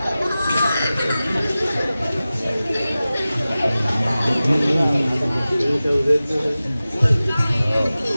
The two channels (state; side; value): inverted; both; correlation -0.96